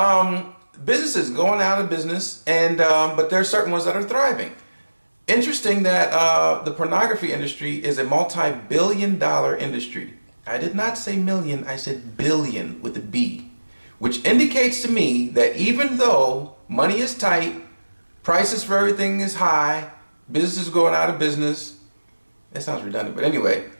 Businesses going out of business, and but there are certain ones that are thriving. Interesting that the pornography industry is a multi-billion-dollar industry. I did not say million, I said billion with a B, which indicates to me that even though money is tight, prices for everything is high, businesses going out of business, that sounds redundant, but anyway,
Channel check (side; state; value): both; inverted; correlation -1.00